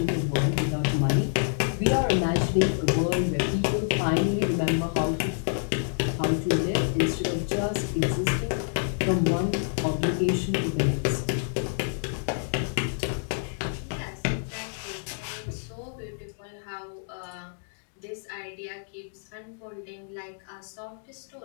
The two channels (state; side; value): silent; right; digital silence